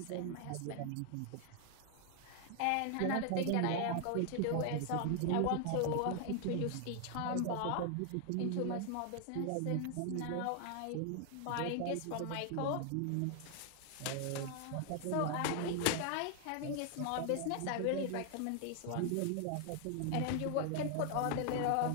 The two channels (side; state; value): both; different; correlation 0.00